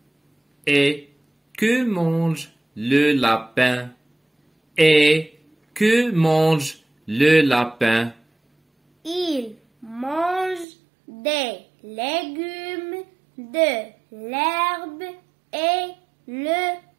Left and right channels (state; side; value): drops out; left; at 10.7 s